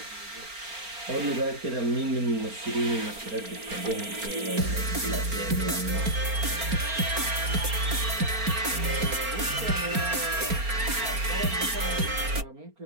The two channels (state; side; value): late; left; 4.4 ms